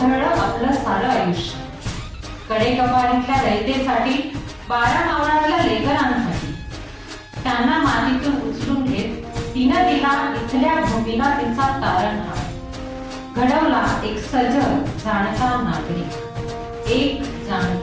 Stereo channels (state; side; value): identical; both; correlation 1.00